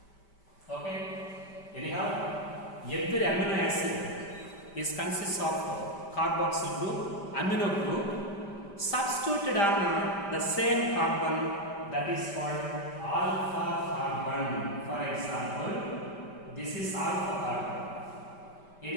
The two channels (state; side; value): late; right; 5.1 ms